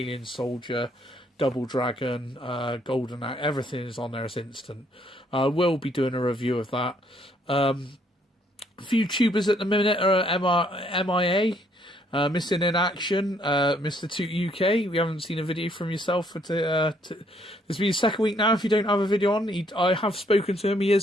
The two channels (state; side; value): normal; both; correlation 0.68